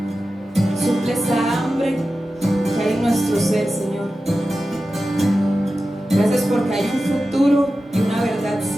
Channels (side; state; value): both; normal; correlation 0.93